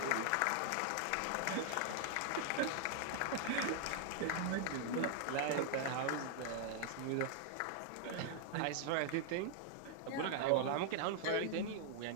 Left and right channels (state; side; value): different; both; correlation 0.00